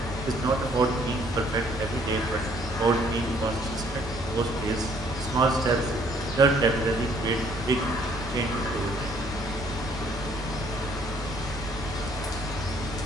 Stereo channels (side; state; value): both; normal; correlation 0.63